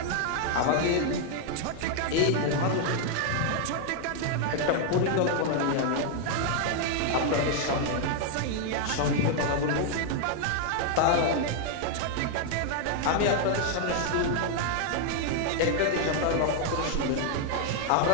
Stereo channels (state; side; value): different; both; correlation 0.00